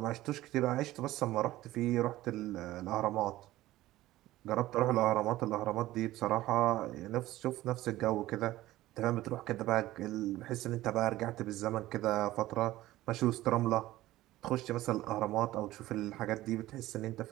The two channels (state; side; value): quieter; left; 16.2 dB